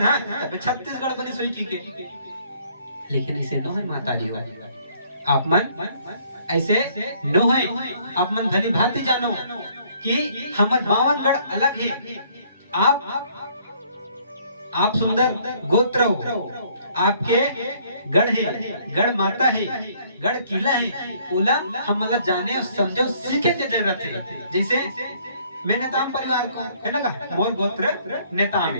है, तब छत्तीसगढ़ बनी सोई की। लेकिन इसे नो है माताजी हो, आप मन ऐसे नो है। आप मन भली भांति जानो कि हमार 52 गढ़ अलग है। आप सुंदर गोत्र हो, आपके गढ़ है, गढ़ माता है, गढ़ किला है। ओला हम मतलब जाने और समझो सीखे के जरूरत है। जैसे मैं नेताम परिवार को है ना का मोर गोत्र नेताम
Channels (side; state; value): both; inverted; correlation -0.62